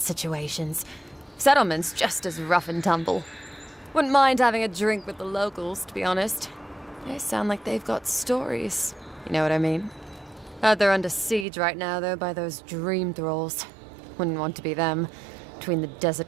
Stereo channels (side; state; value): left; drops out; at 11.5 s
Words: situations. Settlement's just as rough and tumble. Wouldn't mind having a drink with the locals, to be honest. They sound like they've got stories. You know what I mean? Heard they're under siege right now, though, by those dream thralls. Wouldn't want to be them, between the